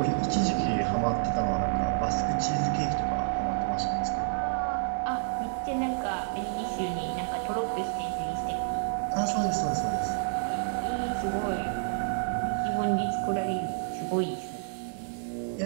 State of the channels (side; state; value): left; silent; digital silence